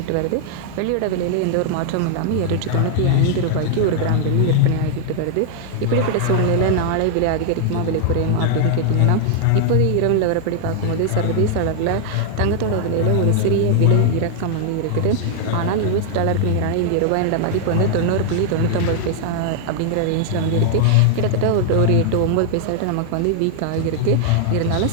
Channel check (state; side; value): different; both; correlation -0.01